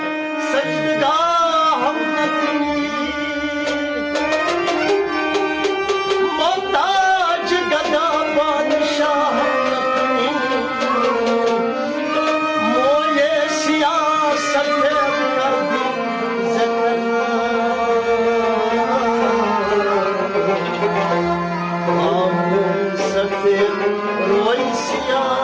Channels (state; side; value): identical; both; correlation 1.00